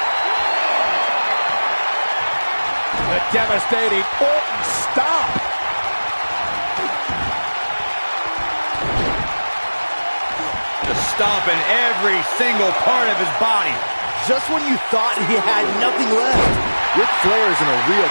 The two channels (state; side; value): inverted; both; correlation -1.00